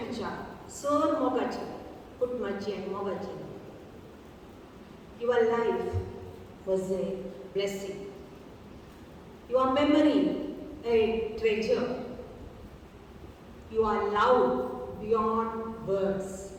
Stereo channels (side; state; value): both; identical; correlation 1.00